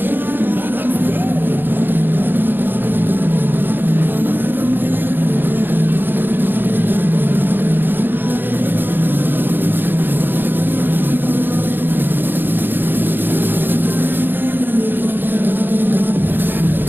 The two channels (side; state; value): left; late; 0.096 ms